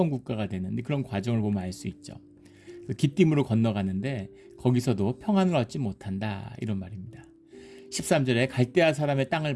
국가가 되는 그런 과정을 보면 알 수 있죠. 기띔으로 건너가는데 거기서도 평안을 얻지 못한다 이런 말입니다. 13절에 갈대아 사람의 땅을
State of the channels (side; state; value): both; identical; correlation 1.00